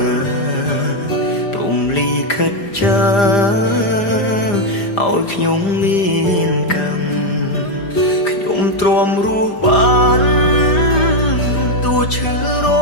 ព្រំលីខិតចាឲ្យខ្ញុំមានកម្មខ្ញុំទ្រាំរស់បានតួឈឺរ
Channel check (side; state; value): right; late; 5.0 ms